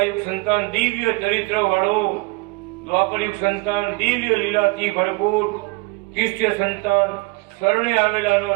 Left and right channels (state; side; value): quieter; left; 27.1 dB